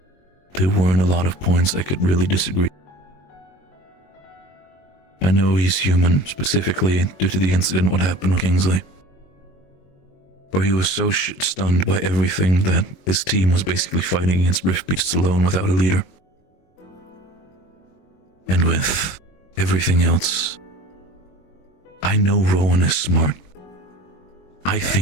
there weren't a lot of points I could really disagree. I know he's human, specifically due to the incident what happened with Kingsley, where he was so stunned by everything that his team was basically fighting against Rift Beasts alone without a leader. And with everything else, I know Rowan is smart. I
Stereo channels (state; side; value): late; right; 22 ms